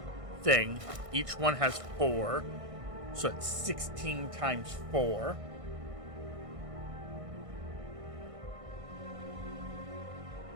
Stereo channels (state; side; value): late; left; 1.6 ms